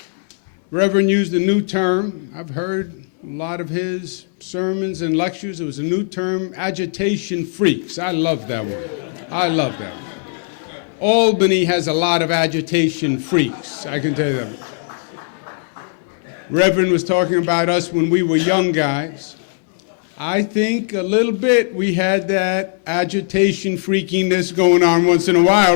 Reverend used a new term. I've heard a lot of his sermons and lectures. It was a new term, agitation freaks. I love that one. I love that one. Albany has a lot of agitation freaks, I can tell you that. Reverend was talking about us when we were young guys. I think a little bit we had that agitation freakiness going on once in a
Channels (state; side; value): silent; right; 65 dB below the other